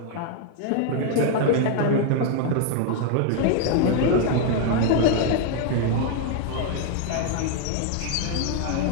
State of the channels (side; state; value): both; different; correlation 0.00